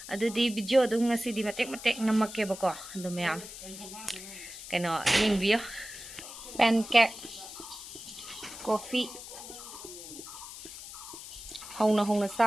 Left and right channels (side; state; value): left; noise; hiss, 12 dB below the sound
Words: adudi video dum ngasidi matek namakke bako adu mayam keno yengbiyo pancake coffee hongna